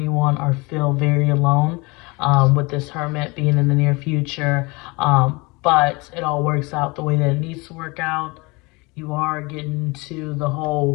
or feel very alone with this Hermit being in the near future. But it all works out the way that it needs to work out. You are getting to the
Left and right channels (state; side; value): quieter; right; 26.0 dB